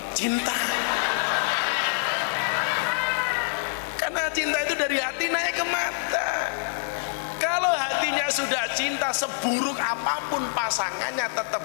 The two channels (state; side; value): silent; right; digital silence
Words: cinta. Karena cinta itu dari hati naik ke mata. Kalau hatinya sudah cinta, seburuk apapun pasangannya tetap